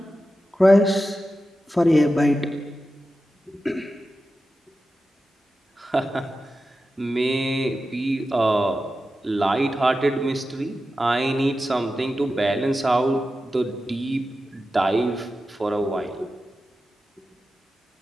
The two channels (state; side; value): normal; both; correlation 0.92